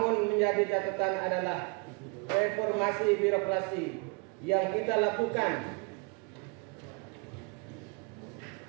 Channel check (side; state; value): left; quieter; 31.9 dB